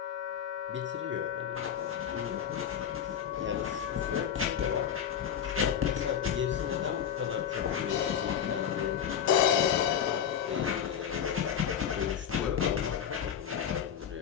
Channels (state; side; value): quieter; right; 8.7 dB